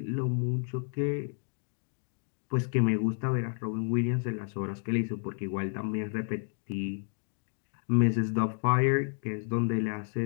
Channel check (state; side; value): silent; right; 57 dB below the other